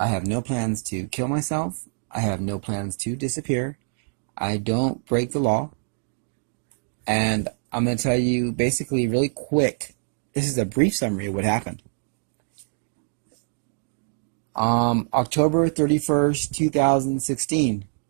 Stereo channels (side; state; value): left; silent; digital silence